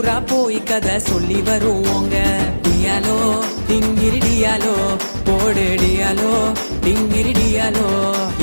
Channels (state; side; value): inverted; both; correlation -1.00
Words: போய் கதை சொல்லி வருவோங்க. டியாலோ டிங்கிரி டியாலோ போடு டியாலோ டிங்கிரி டியாலோ.